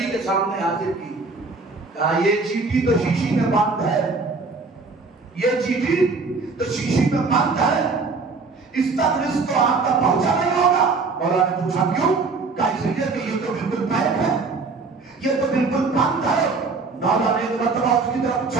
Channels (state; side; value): quieter; left; 4.2 dB